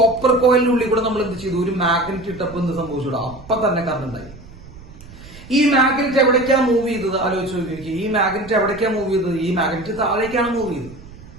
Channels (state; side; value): noise; right; rumble, 18 dB below the sound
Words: കോയിലിന്റെ ഉള്ളിൽ കൂടെ നമ്മൾ എന്ത് ചെയ്തു? ഒരു മാഗ്നറ്റ് ഇട്ടപ്പോ എന്ത് സംഭവിച്ചു? അപ്പൊ തന്നെ കറണ്ട് ഉണ്ടായി. ഈ മാഗ്നറ്റ് എവിടേക്കാ മൂവ് ചെയ്തത്? ആലോചിച്ച് നോക്കി. ഈ മാഗ്നറ്റ് എവിടേക്കാ മൂവ് ചെയ്തത്? ഈ മാഗ്നറ്റ് താഴേക്കാണ് മൂവ് ചെയ്തത്.